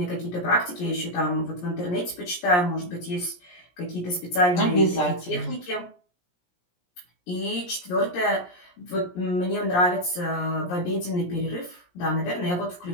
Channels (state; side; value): late; right; 17 ms